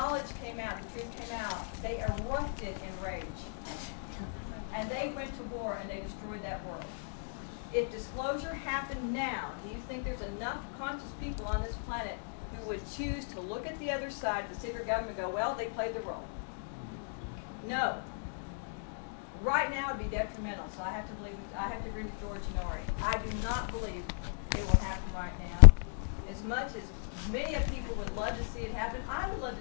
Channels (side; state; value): right; silent; digital silence